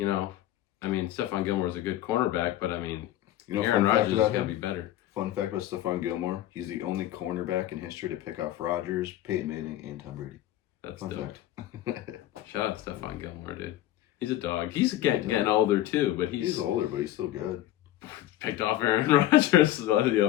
I mean, Stephon Gilmore is a good cornerback, but I mean, Aaron Rodgers has got to be better. Fun fact about Stephon Gilmore, he's the only cornerback in history to pick off Rodgers, Peyton Manning, and Tom Brady. That's dope. Shout out to Stephon Gilmore, dude. He's a dog. He's getting older too, but he's older, but he's still good. Picked off Aaron Rodgers the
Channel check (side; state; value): right; quieter; 13.8 dB